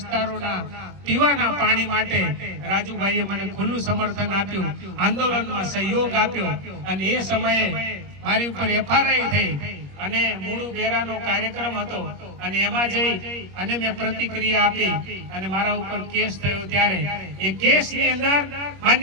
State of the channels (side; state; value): left; late; 21 ms